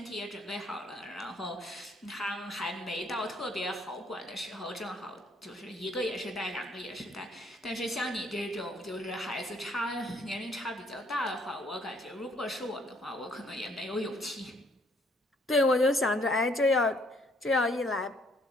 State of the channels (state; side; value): normal; both; correlation 0.65